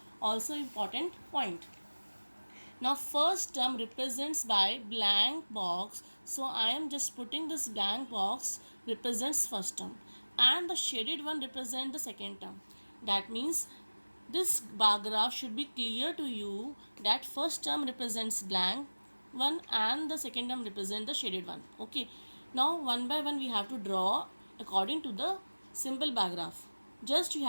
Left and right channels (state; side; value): inverted; both; correlation -1.00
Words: also important point. Now first term represents by blank box, so I am just putting this blank box represents first term, and the shaded one represents the second term. That means this bar graph should be clear to you that first term represents blank one and the second term represents the shaded one. Okay, now one by one we have to draw according to the simple bar graph. Just you